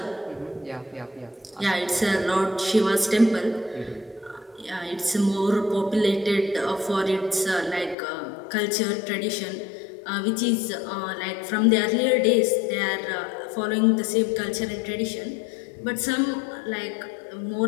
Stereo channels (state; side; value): drops out; right; at 8.0 s